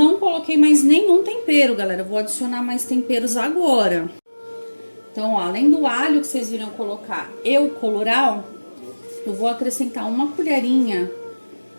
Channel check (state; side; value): inverted; both; correlation -1.00